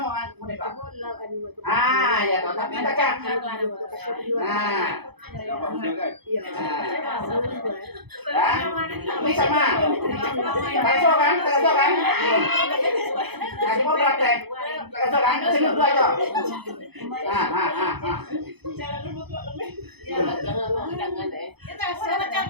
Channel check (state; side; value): late; left; 0.98 ms